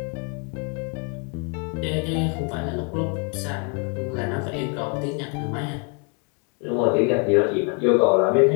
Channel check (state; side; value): quieter; right; 37.8 dB